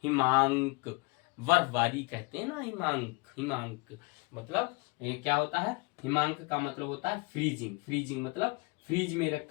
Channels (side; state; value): right; quieter; 28.3 dB